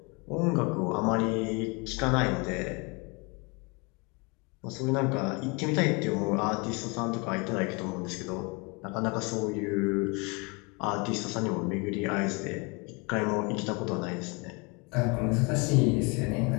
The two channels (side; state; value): right; quieter; 29.8 dB